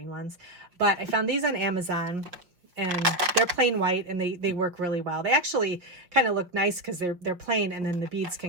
ones, but I found these on Amazon. And they're plain white, and they work really well. They actually kind of look nice because they're plain, and then the beads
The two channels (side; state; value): left; late; 5.3 ms